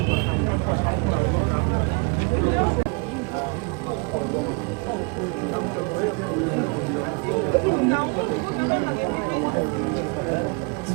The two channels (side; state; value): left; quieter; 32.9 dB